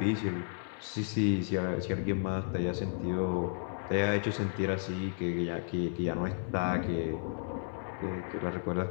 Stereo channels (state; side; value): silent; right; 56 dB below the other